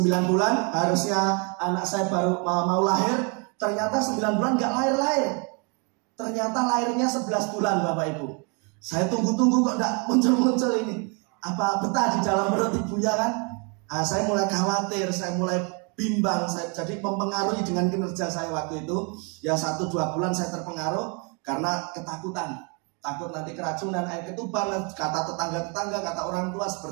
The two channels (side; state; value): left; quieter; 34.2 dB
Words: bulan, harusnya anak saya baru mau lahir. Ternyata 9 bulan gak lahir-lahir. Ternyata lahirnya 11 bulan Bapak Ibu. Saya tunggu-tunggu kok gak muncul-muncul ini. Apa betah di dalam perut ibunya kan? Saya mulai khawatir, saya mulai bimbang. Jadi mempengaruhi dengan kinerja saya waktu itu. Ya 1-2 bulan saya terpengaruh karena ketakutan. Takut nanti keracunan, air ketuban, kata tetangga-tetangga, kata orang tua